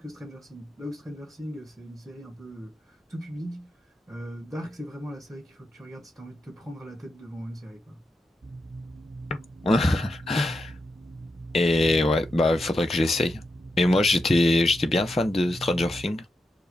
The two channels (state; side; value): normal; both; correlation 0.87